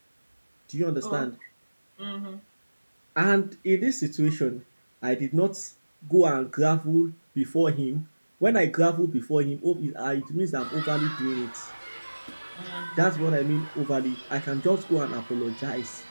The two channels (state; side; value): inverted; both; correlation -1.00